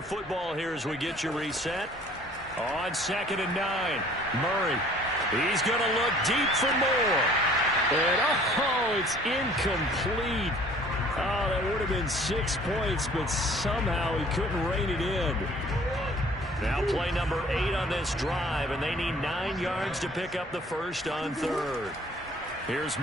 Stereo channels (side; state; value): both; normal; correlation 0.53